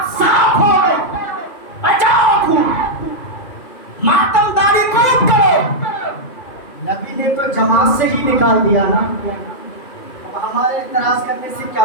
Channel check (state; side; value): late; right; 2.7 ms